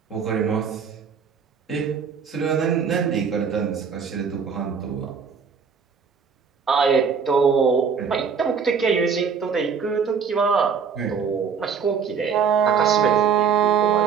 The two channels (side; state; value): left; quieter; 6.4 dB